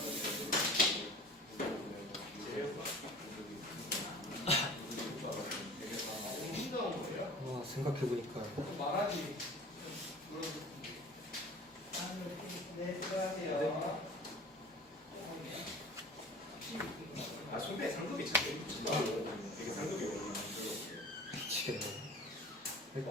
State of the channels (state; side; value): normal; both; correlation 0.41